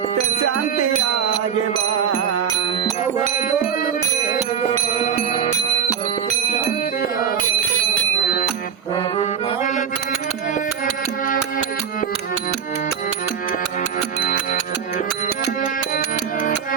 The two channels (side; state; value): left; quieter; 7.7 dB